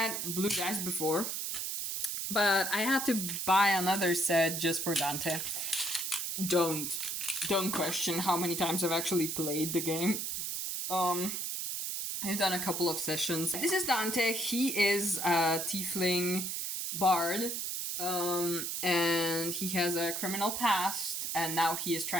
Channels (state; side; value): noise; right; hiss, 2 dB below the sound